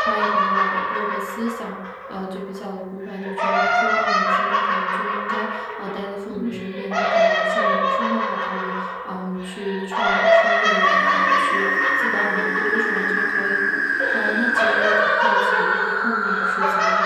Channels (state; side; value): identical; both; correlation 1.00